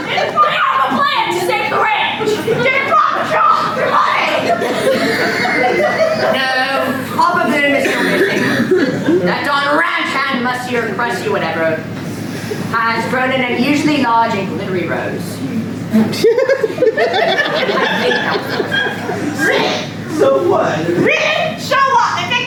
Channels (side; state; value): both; identical; correlation 1.00